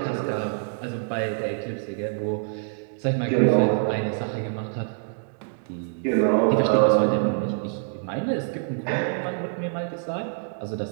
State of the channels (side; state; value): left; silent; digital silence